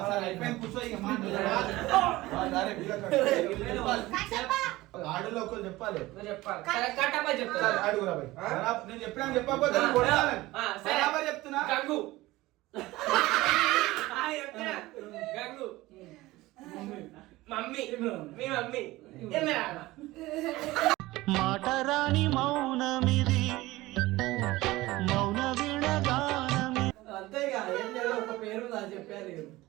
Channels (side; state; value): left; quieter; 18.7 dB